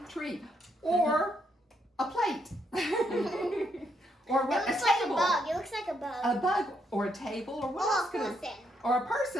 tree, or a plate, or what? It looks A like table. a bug. It looks like a bug. A bug, or a table, or what Oh, else a could it? person. Or a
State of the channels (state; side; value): normal; both; correlation 0.76